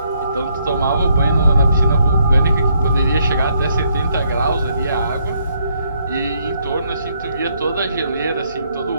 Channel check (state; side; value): inverted; both; correlation -0.72